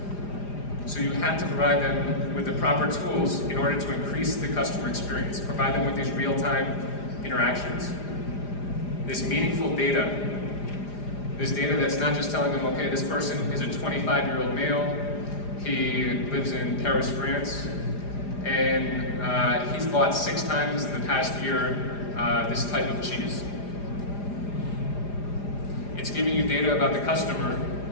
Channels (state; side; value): late; right; 4.9 ms